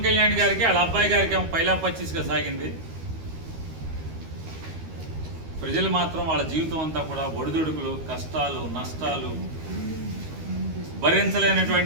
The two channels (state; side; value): late; left; 13 ms